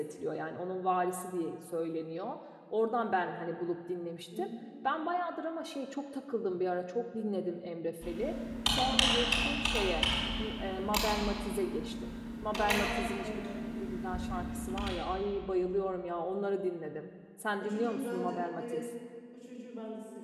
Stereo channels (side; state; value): both; identical; correlation 1.00